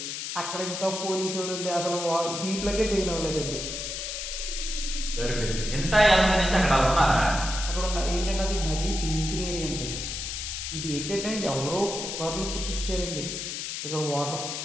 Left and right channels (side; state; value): left; noise; hiss, 5 dB below the sound